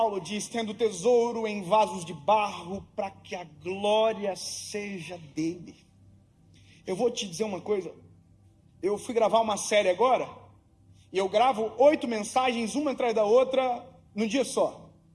diz, tendo tesouro em vasos de barro, para que a glória seja dele. Eu vou te dizer uma coisa, eu fui gravar uma série agora, e eu gravo 8 mensagens, uma atrás da outra, num dia só.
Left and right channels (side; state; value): both; identical; correlation 1.00